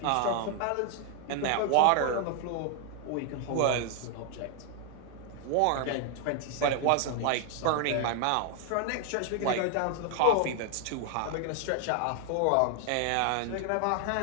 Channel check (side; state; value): both; different; correlation 0.00